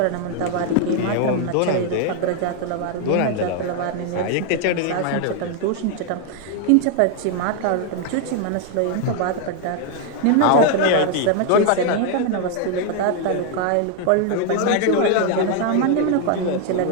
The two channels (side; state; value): both; different; correlation 0.00